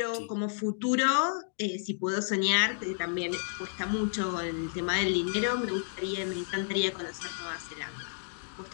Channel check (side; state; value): right; silent; digital silence